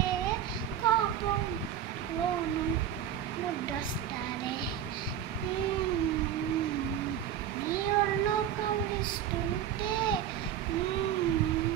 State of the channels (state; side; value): quieter; left; 9.9 dB